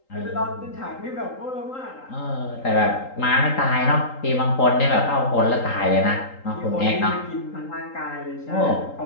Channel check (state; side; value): late; right; 3.8 ms